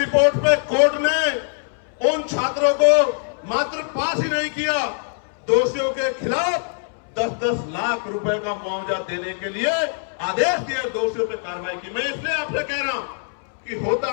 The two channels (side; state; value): right; silent; 64 dB below the other